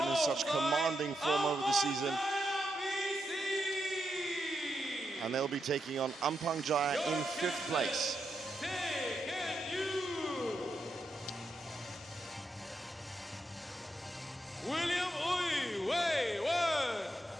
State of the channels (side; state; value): both; normal; correlation 0.84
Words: in such commanding form over the season. And they'll be taking on Ampang Jaya in 5th place. William Uy Wei Wen.